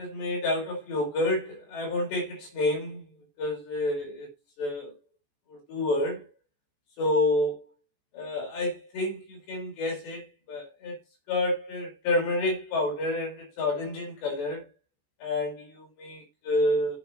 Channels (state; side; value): late; right; 14 ms